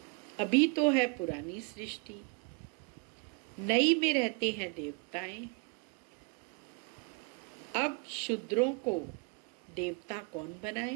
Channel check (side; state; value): left; quieter; 33.5 dB